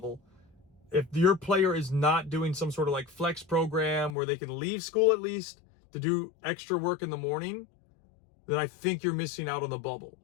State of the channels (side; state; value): right; drops out; at 4.2 s